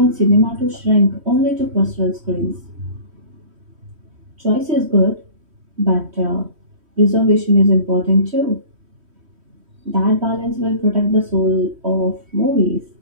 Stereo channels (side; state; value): left; late; 3.1 ms